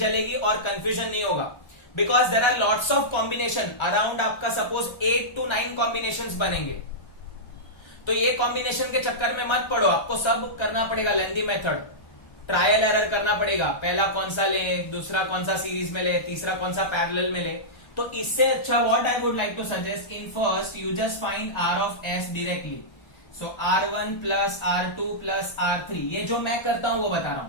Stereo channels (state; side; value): late; right; 1.3 ms